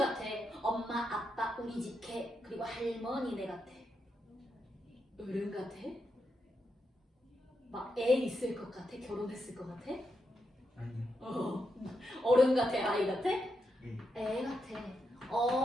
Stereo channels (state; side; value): normal; both; correlation 0.84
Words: 엄마, 아빠, 우리 집 개, 그리고 할머니네 같아. 어른 같아? 막 애 있을 것 같아? 결혼했을 것 같아? 아니요. 어른 같아? 아이 같아? 예. 애 같아.